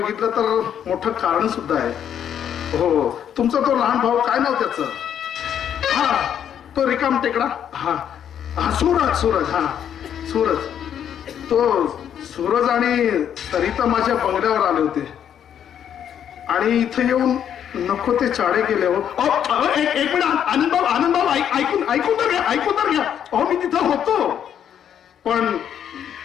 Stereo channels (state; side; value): quieter; right; 9.2 dB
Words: तर मोठं कारण सुद्धा आहे. हो, तुमचा तो लहान भाऊ, काय नाव त्याचं? हा, तो रिकाम टेकडा. हा हा, सूरज. हा, सूरज. तो सूरज आणि सरिता माझ्या बंगल्यावर आले होते आणि इथे येऊन नको ते चाळे गेले. हो, एक मिनिट आनंद भाऊ, ऐकून तर घ्या. अहो, मी तिथं होतो, पण